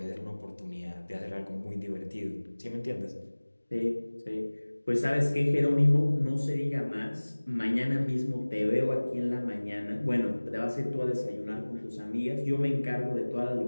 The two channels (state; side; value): inverted; both; correlation -1.00